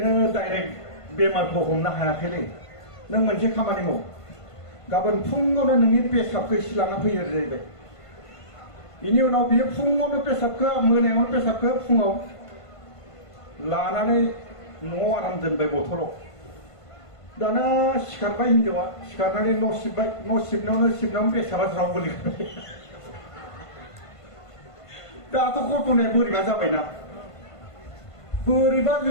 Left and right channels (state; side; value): late; right; 1.5 ms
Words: डाइरेक्ट बेमारखौ हमनो हायाखैलै नों मोनसे खामानि माव गाबोन फुङावनो नोंनि पेसाबखौ एसे लाना फैयो जाहैबाय बेनि उनाव बियो फुङावनो पेसाबखौ मोनायावनो पेसाबखौ फुङाव लानानै न'आव आराम दोनबाय बथलाव दाना सिखारबाय हिनजावा सिखारनानै न' सिबनायावनो पेसाबा ज्राव गोलैबाय दाथ' घटनाया बोरैबा जाबायना बोरैबा